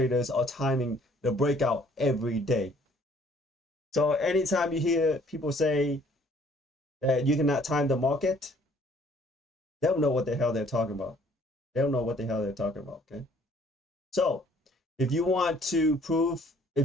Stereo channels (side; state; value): both; normal; correlation 0.59